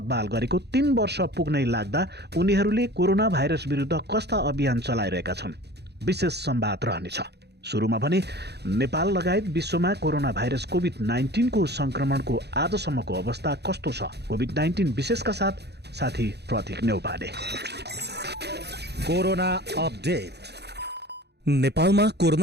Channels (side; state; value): left; late; 0.48 ms